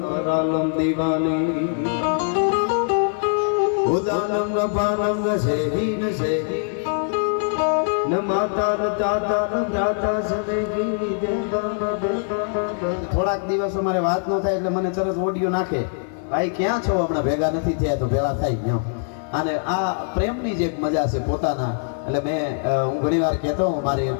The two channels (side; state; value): right; silent; 58 dB below the other